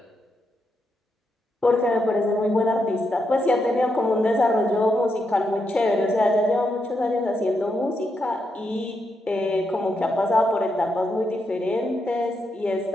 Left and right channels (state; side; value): normal; both; correlation 0.82